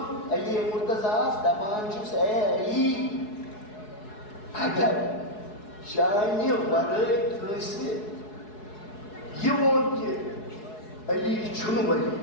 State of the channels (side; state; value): right; late; 4.7 ms